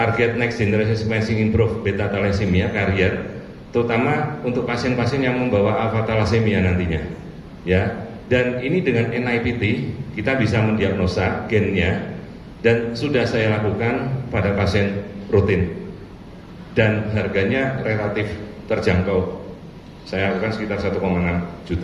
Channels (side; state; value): both; identical; correlation 1.00